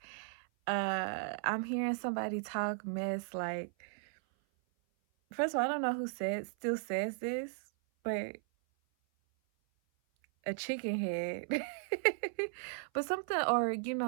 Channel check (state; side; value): silent; left; 54 dB below the other